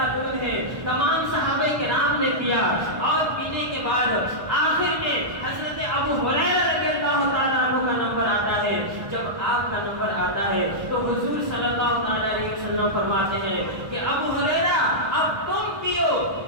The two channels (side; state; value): left; late; 1.2 ms